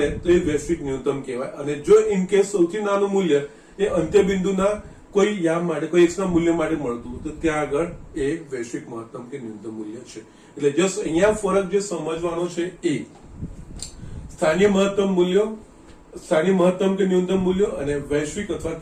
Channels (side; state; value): both; identical; correlation 1.00